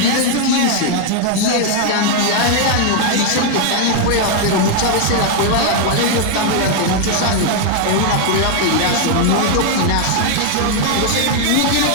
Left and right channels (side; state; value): both; different; correlation 0.00